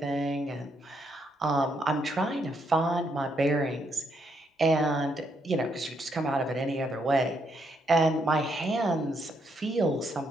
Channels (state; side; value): normal; both; correlation 0.76